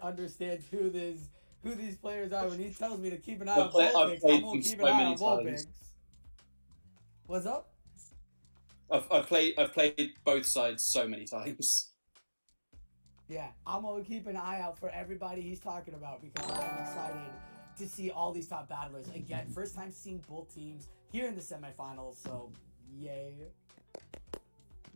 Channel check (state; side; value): inverted; both; correlation -1.00